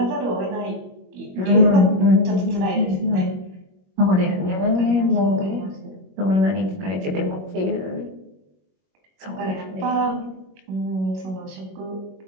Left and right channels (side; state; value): left; late; 21 ms